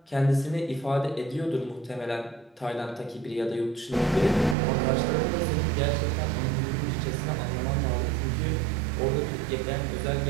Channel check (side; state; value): left; drops out; at 4.5 s